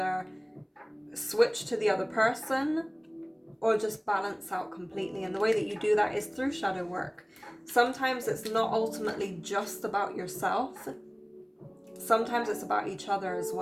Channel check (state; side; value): identical; both; correlation 1.00